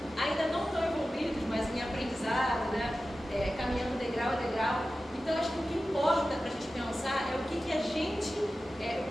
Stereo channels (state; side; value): normal; both; correlation 0.94